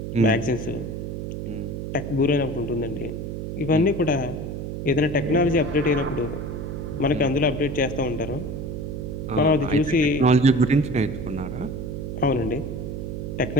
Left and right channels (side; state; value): right; noise; hum, 6 dB below the sound